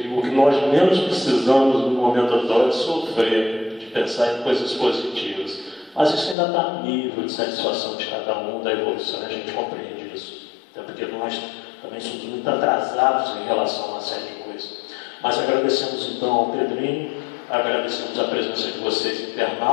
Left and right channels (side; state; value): right; drops out; at 6.4 s